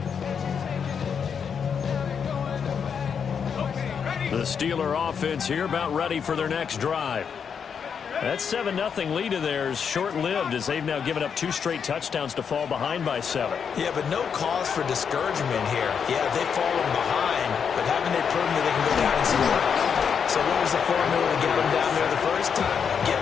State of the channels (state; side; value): quieter; right; 6.9 dB